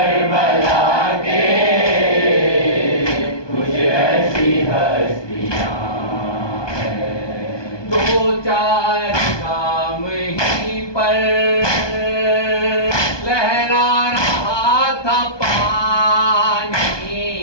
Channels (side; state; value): right; late; 1.2 ms